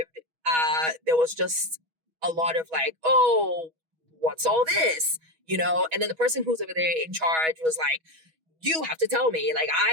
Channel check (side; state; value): left; late; 6.2 ms